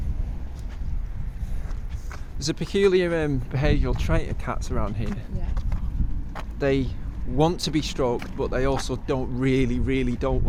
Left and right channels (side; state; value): both; identical; correlation 1.00